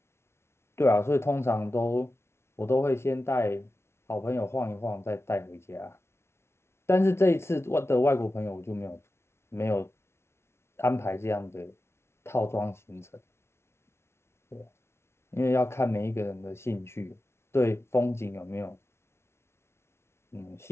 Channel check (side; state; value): right; late; 0.12 ms